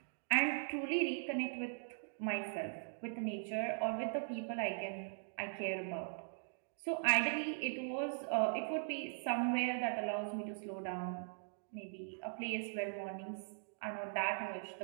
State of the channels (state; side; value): silent; left; digital silence